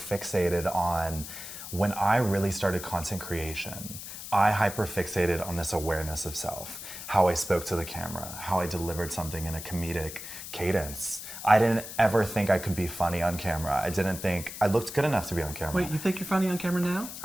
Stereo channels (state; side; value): noise; left; hiss, 10 dB below the sound